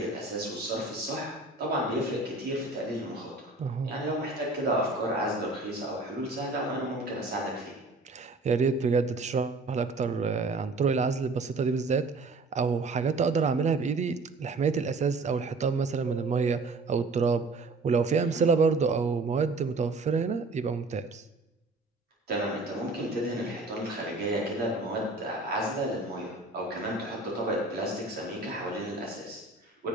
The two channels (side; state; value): left; quieter; 3.4 dB